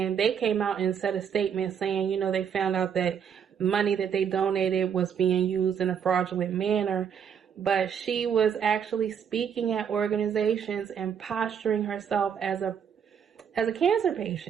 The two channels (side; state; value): left; quieter; 7.8 dB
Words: they came out and said a statement saying, they found out that money that they donated was being used in a fraudulent manner. But she was actually speaking at organizations and posturing herself as a cancer